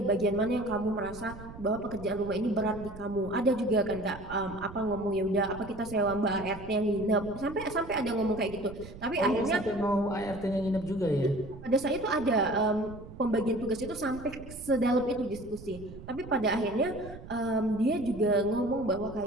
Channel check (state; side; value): noise; right; rumble, 15 dB below the sound